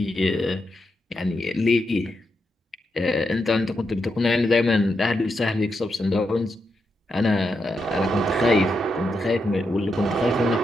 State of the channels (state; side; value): normal; both; correlation 0.84